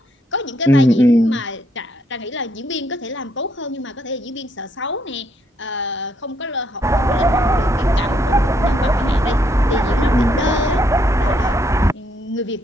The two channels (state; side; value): normal; both; correlation 0.73